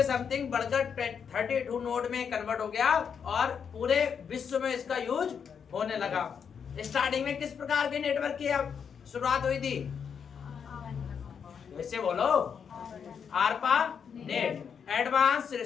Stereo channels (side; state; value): right; quieter; 7.0 dB